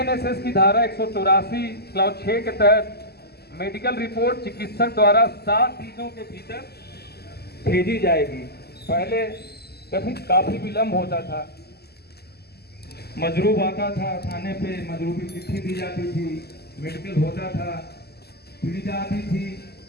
की धारा 184 क्लॉज 6 के तहत मेडिकल रिपोर्ट चिकित्सक द्वारा 7 दिनों के भीतर भेजी जाएगी। पहले काफी विलंब होता था, मजरूब आता था थाने पे, मजरूबी चिट्ठी दी जाती थी, मेडिकल होता था, पीड़िता आती थी,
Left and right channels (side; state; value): right; late; 0.46 ms